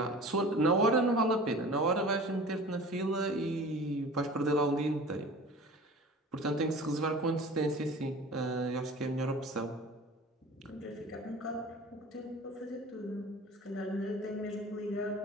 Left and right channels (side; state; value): both; normal; correlation 0.40